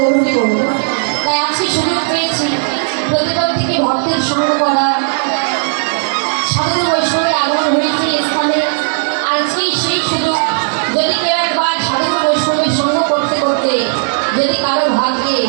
বলব। তাই আজকে সুযোগ পেয়েছি প্রতিবার থেকে ভক্তের সঙ্গ করা, সাধু বৈষ্ণবের আগমন হয়েছে স্থানে। আজকেই সেই সুযোগ, যদি কেউ একবার সাধু বৈষ্ণবের সঙ্গ করতে করতে যদি কারো ভাগ্যে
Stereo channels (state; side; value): silent; left; digital silence